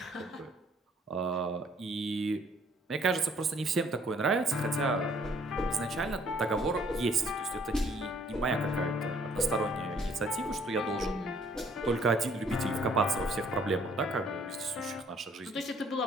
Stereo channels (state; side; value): normal; both; correlation 0.61